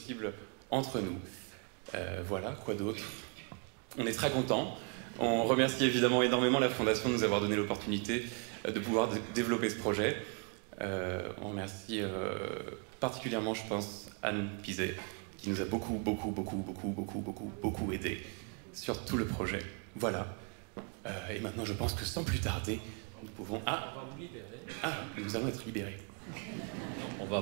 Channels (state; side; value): quieter; left; 36.9 dB